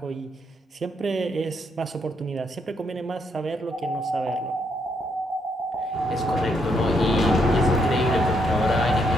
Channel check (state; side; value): normal; both; correlation 0.75